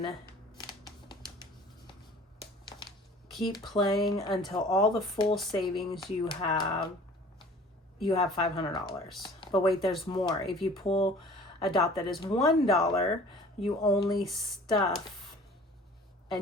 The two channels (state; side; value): normal; both; correlation 0.47